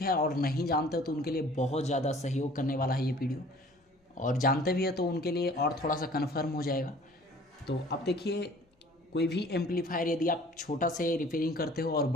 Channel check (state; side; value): normal; both; correlation 0.50